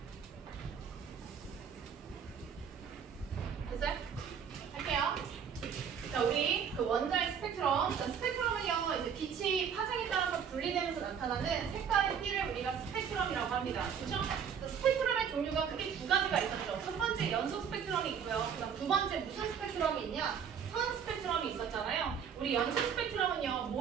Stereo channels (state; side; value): quieter; left; 7.5 dB